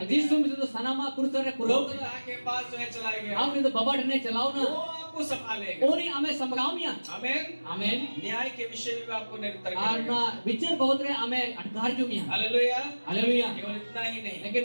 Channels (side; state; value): both; inverted; correlation -1.00